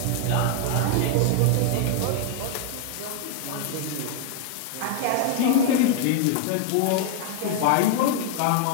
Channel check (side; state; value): both; different; correlation 0.00